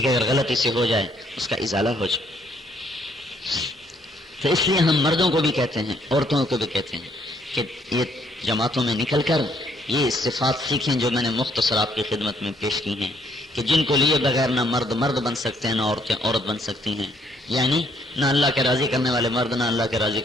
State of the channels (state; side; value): normal; both; correlation 0.68